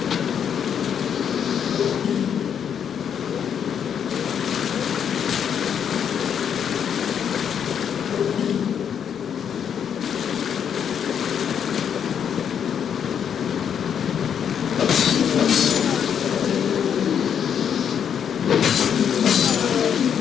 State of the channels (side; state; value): right; quieter; 8.2 dB